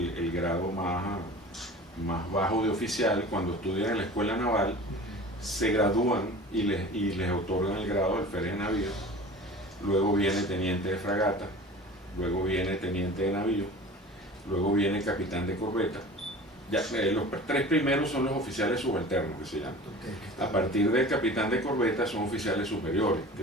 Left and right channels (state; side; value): normal; both; correlation 0.40